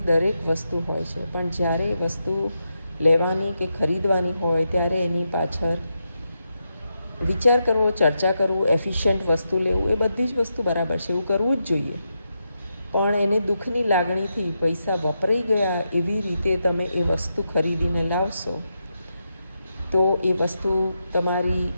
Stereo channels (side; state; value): both; inverted; correlation -0.85